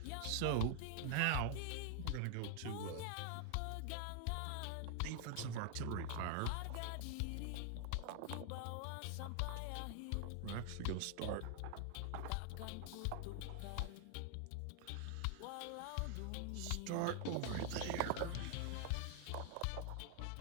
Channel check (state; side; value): different; both; correlation 0.00